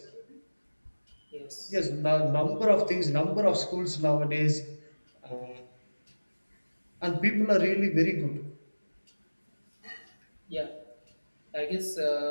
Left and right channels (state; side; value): inverted; both; correlation -1.00